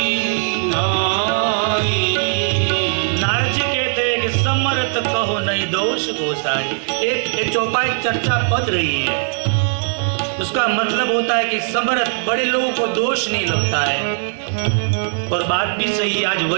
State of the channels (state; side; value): silent; left; 59 dB below the other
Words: नाई। नारद जी कहते हैं कि समर्थ कहो नहीं दोष गोसाई। एक चौपाई चर्चा पद रही है, उसका मतलब होता है कि समर्थ बड़े लोगों को दोष नहीं लगता है। और बात भी सही, आज